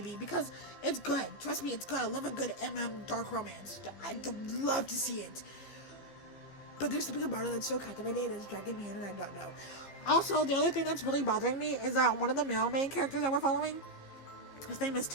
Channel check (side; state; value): right; late; 15 ms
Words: because it's good. Trust me, it's good. I love a good dark romance. I'd love to see it. But there's something about it that's so captivating and it's dragging me in, and I don't know. Also, the other thing that's really bothering me is that one of the male main characters that we're following, his name is